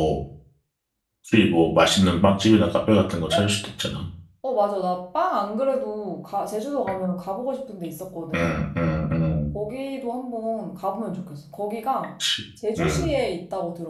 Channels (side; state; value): both; identical; correlation 1.00